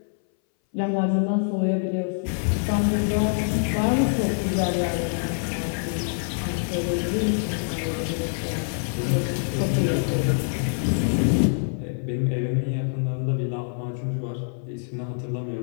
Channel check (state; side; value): silent; right; 60 dB below the other